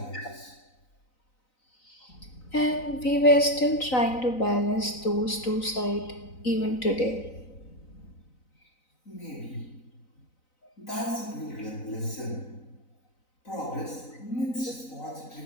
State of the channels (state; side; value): late; right; 4.0 ms